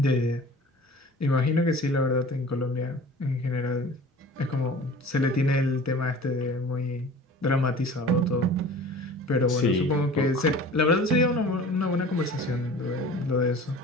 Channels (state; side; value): normal; both; correlation 0.42